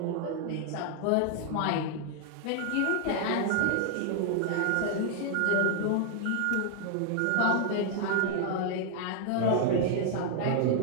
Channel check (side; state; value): both; different; correlation 0.00